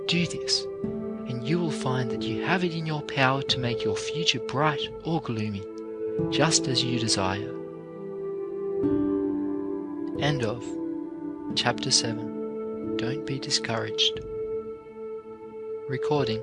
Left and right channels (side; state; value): both; identical; correlation 1.00